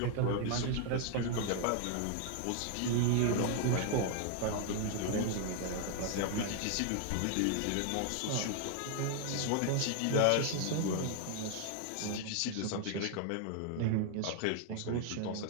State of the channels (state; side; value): different; both; correlation 0.00